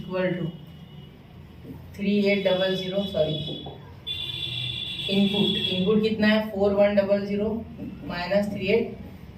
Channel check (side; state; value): both; identical; correlation 1.00